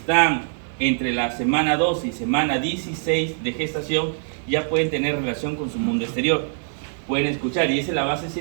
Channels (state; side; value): silent; left; digital silence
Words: entre la semana 12 y semana 16 de gestación, ya pueden tener relación con su mundo exterior. Pueden escuchar, y esa es la base